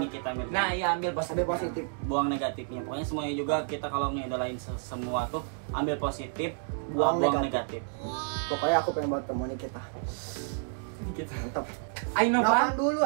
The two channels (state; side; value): silent; left; 58 dB below the other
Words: Nikita Mirzani. Nah iya, ambil Positif. Buang negatifnya. Pokoknya semuanya juga kita kalau ngidolain semua tuh ambil positif, Buang buang negatif. negatif. Pokoknya aku pengen buat temu Nikita. Mantap. Ayo Nopan Nopan dulu